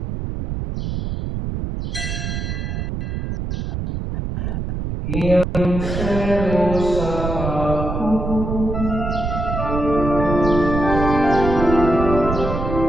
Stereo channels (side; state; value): right; noise; rumble, 3 dB below the sound